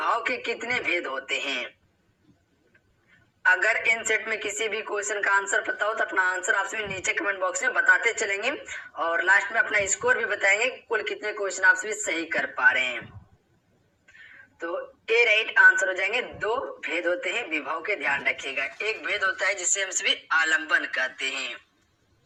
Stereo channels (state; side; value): identical; both; correlation 1.00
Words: के कितने भेद होते हैं। अगर इन सेट में किसी भी क्वेश्चन का आंसर पता हो तो अपना आंसर आप सभी नीचे कमेंट बॉक्स में बताते चलेंगे और लास्ट में अपना स्कोर भी बताएंगे कुल कितने क्वेश्चन आप सभी सही कर पा रहे हैं। तो ए राइट आंसर हो जाएंगे। दो भेद होते हैं विभाव के, ध्यान रखिएगा। एक भेद होता है जिसे हम सभी आलंबन कहते हैं,